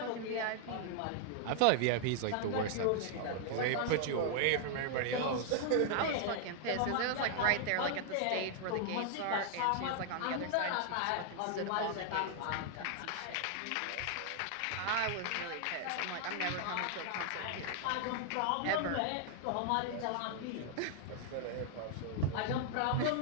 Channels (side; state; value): both; different; correlation 0.00